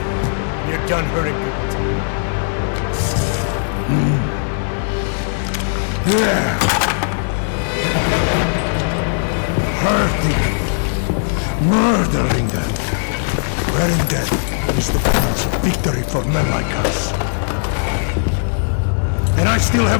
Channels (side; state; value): right; silent; digital silence